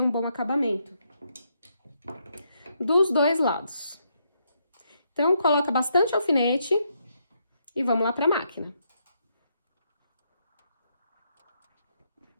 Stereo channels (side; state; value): both; inverted; correlation -0.77